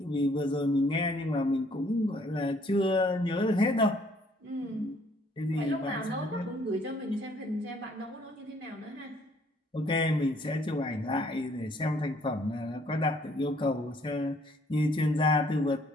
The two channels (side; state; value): both; normal; correlation 0.63